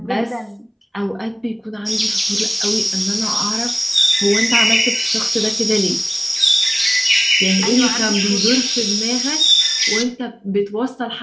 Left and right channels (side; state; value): both; identical; correlation 1.00